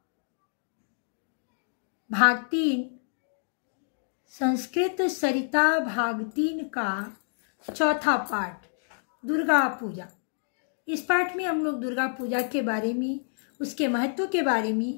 भाग 3। संस्कृत सरिता भाग 3 का चौथा पाठ दुर्गा पूजा। इस पाठ में हम लोग दुर्गा पूजा के बारे में, उसके महत्व के बारे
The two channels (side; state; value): right; silent; digital silence